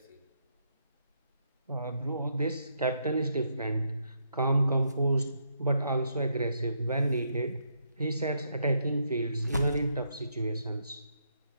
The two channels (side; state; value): both; inverted; correlation -0.76